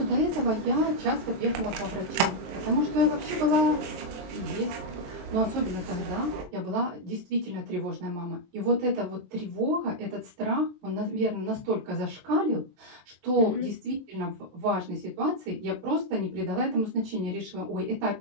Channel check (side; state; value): left; late; 23 ms